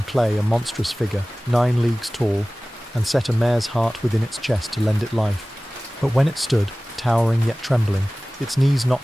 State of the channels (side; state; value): both; normal; correlation 0.98